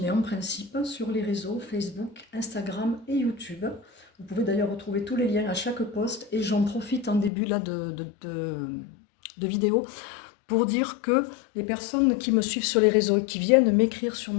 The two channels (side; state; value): right; drops out; at 7.3 s